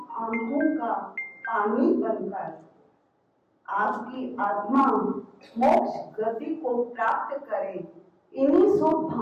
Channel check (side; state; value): both; identical; correlation 1.00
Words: का पानी बनकर। आपकी आत्मा मोक्ष गति को प्राप्त करे इन्हीं शुभ